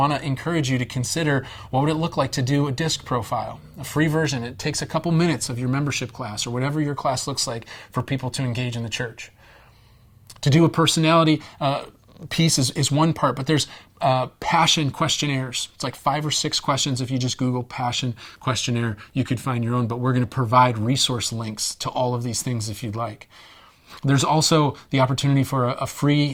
to encourage you to consider what would it look like to do a DISC profile, a free version. It takes a couple minutes of your membership class or whatever your class looks like for people to engage in the church. To do a personality piece is one part, but there's passion questionnaires. It's like 5 or 6 questions. If you just Google passion questionnaire, you could find your own, but we're going to provide resource links to all of these things if you'd like. There's also the opportunity for a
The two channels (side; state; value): both; identical; correlation 1.00